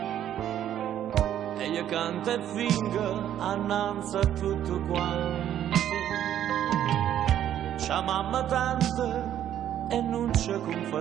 e io canto e fingo annanzi a tutto quanto. C'ha mamma tante e non ci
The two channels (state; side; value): quieter; left; 10.9 dB